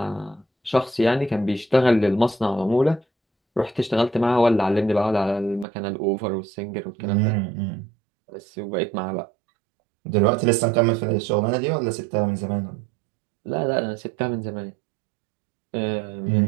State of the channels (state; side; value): drops out; left; at 5.7 s